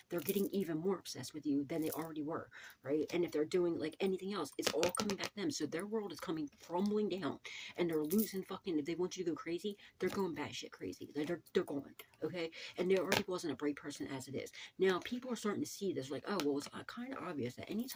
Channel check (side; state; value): both; identical; correlation 1.00